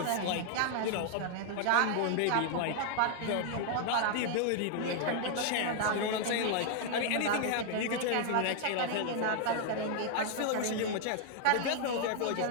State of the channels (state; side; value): different; both; correlation 0.00